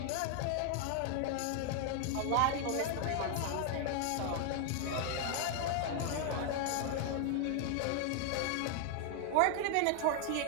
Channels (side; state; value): both; different; correlation 0.00